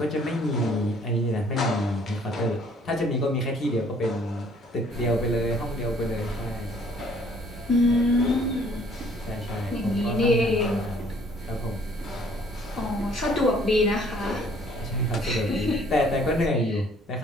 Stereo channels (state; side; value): normal; both; correlation 0.60